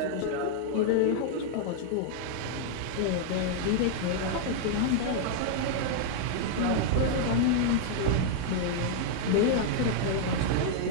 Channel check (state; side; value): different; both; correlation -0.01